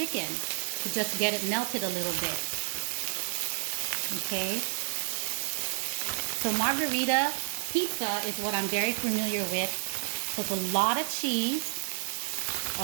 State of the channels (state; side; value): silent; left; digital silence